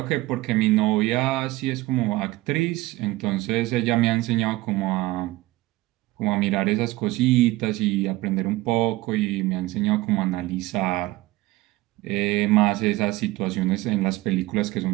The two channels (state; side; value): quieter; left; 18.8 dB